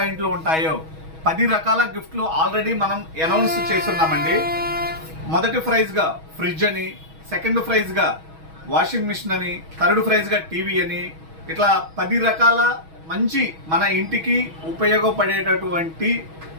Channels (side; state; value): left; late; 6.2 ms